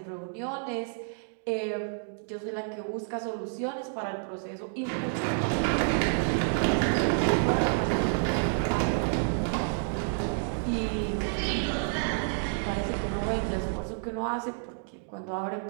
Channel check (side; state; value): left; silent; digital silence